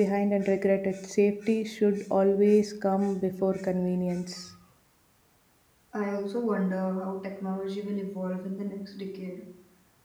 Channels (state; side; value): identical; both; correlation 1.00